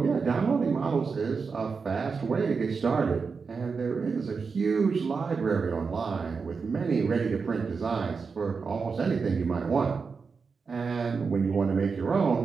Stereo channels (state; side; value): quieter; left; 5.1 dB